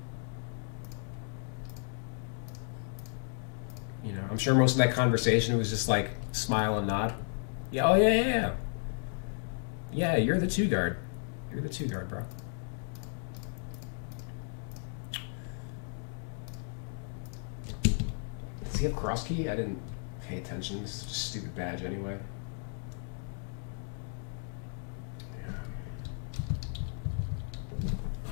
You know, I'm sure most of that conversation was just like smile and nod. Yeah, oh yeah. Yeah, you're the two guard. You're the two guard, bro. Does he have cross key? I didn't pay attention. This is just a stupid badge anyway. Yeah.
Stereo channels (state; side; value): silent; right; 55 dB below the other